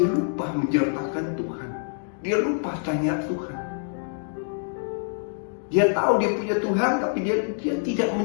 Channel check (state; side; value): silent; right; digital silence